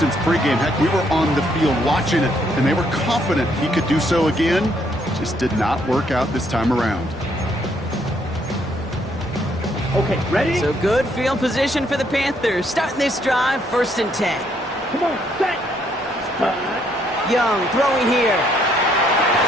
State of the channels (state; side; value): normal; both; correlation 0.70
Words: pregame. Heck, we were on the field watching it, and they were confident he could do so again. Just did not work out this time around. Okay, ready? So good field position for the Panthers. Starting this drive, 1st and 10. Come on, set. Young throwing here.